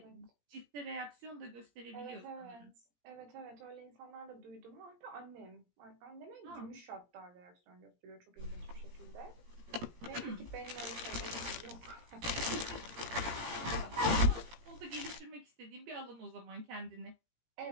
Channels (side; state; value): left; late; 17 ms